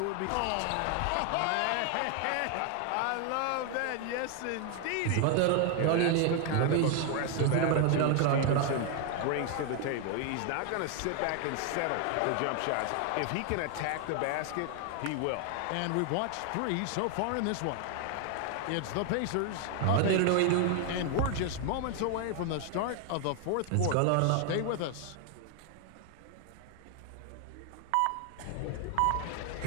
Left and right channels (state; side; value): different; both; correlation 0.00